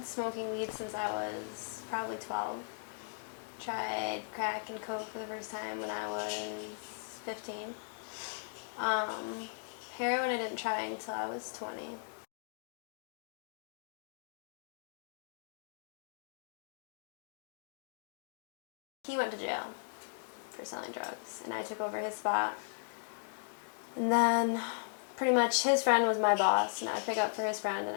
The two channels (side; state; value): right; silent; digital silence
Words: smoking weed since I was probably 12. Tried crack and coke for the first time when I was 15. Um, Heroin I didn't try until I was 20. He went to jail for selling drugs, and I took over his spot. And then pretty much his friend was my boss, and I would pick up for his friend and